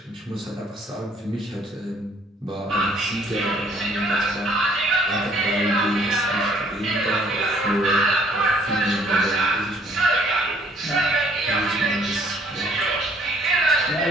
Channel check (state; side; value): normal; both; correlation 0.61